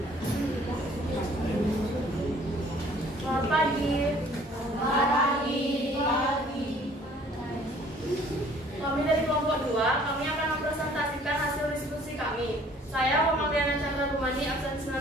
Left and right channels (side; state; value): both; normal; correlation 0.56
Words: Selamat pagi. Kami dari kelompok 2, kami akan mempresentasikan hasil diskusi kami. Saya Muhammadiyana Chandra Rumani, absen